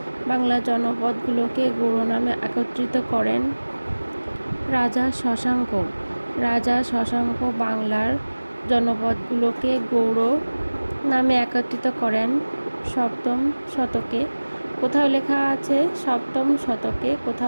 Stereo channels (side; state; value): both; inverted; correlation -1.00